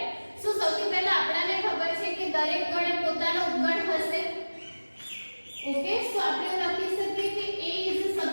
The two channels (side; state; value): both; inverted; correlation -1.00